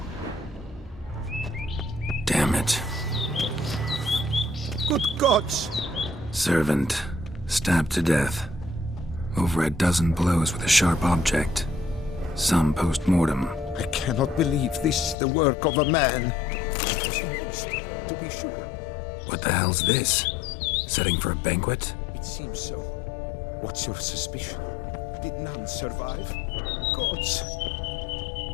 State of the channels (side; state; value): right; drops out; at 15.2 s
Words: Damn it. Good gods! Servant. Stabbed to death. Over a dozen blows with a sharp object. Some post-mortem. I cannot believe this is the work of a man. It was a monster, to be sure. What the hell's this? Setting for a banquet? It seems so. What's your suspicion? Did none survive? Gods!